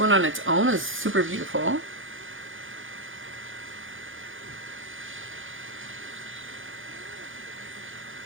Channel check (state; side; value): late; left; 0.58 ms